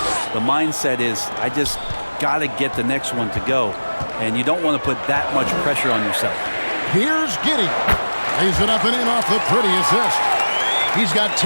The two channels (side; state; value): both; inverted; correlation -1.00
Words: the mindset is, I just got to get the next one to go. And you don't want to put that much pressure on yourself. Here's Giddey. Lays it up and in off the pretty assist. He's got